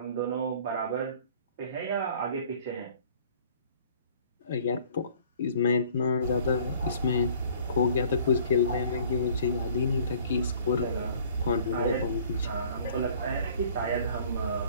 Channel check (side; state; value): both; inverted; correlation -0.53